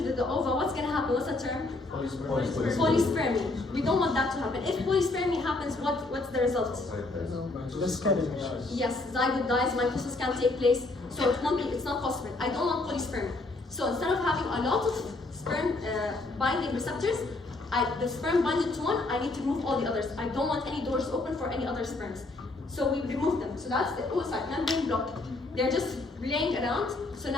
the ova, what's going to happen? What's the term? Polyspermy. We don't want that to happen. If polyspermy happens, what's the result? Yes, zygote dies, mitosis can't take place, so it's not possible. I don't want polyspermy. So instead of having a lot of sperm binding receptors, the sperm binded to one, I need to remove all the others. I don't want any doors open for any other sperms. So we remove them. So that's the oocyte membrane block. They're just laying around. So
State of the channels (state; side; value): quieter; right; 3.1 dB